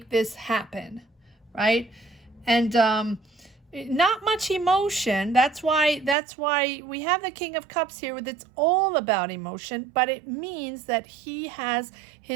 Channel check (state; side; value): drops out; left; at 6.2 s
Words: this happen, right? And not much emotion. That's why we have the King of Cups here, with it's all about emotion, but it means that he has